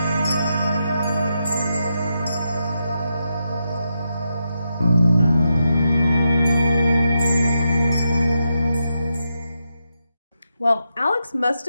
Well, Alex must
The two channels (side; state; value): both; inverted; correlation -0.85